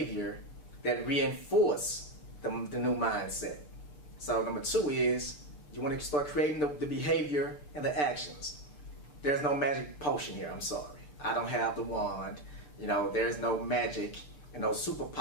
that reinforce the new mindset. So number 2 is you want to start creating the behavior and the actions. There's no magic potion here, I'm sorry. I don't have the wand. There's no magic and no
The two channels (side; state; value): right; late; 6.8 ms